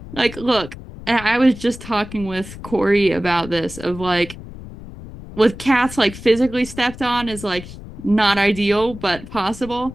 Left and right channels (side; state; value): left; noise; rumble, 14 dB below the sound